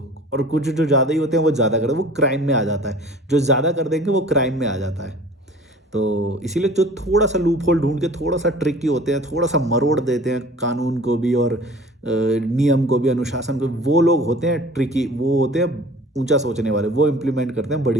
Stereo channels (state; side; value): normal; both; correlation 0.45